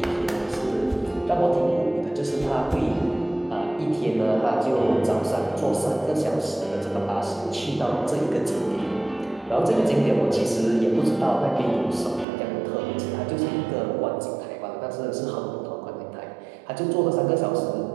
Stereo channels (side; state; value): left; drops out; at 12.2 s